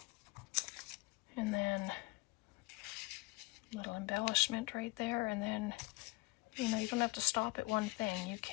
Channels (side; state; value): right; quieter; 24.2 dB